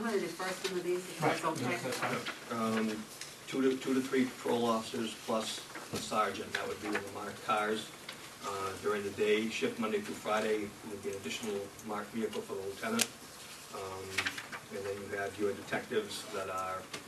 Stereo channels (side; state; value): both; identical; correlation 1.00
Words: going to defer some of these if that's okay. Yes, that's fine. 2 to 3 patrol officers plus a sergeant. That would be in the marked cars. During the day shift, Monday through Friday, would be an additional marked vehicle for the lieutenant. And then you have your detectives that are